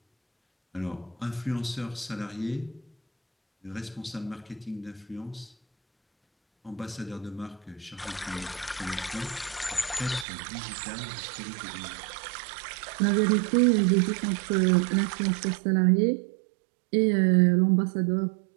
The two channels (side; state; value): left; drops out; at 10.2 s